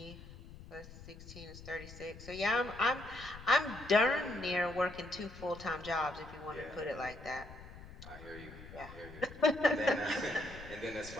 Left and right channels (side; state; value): left; noise; rumble, 16 dB below the sound